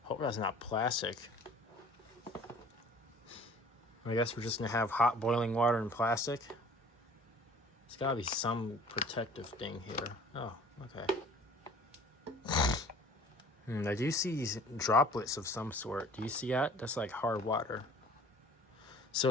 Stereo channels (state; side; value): normal; both; correlation 0.49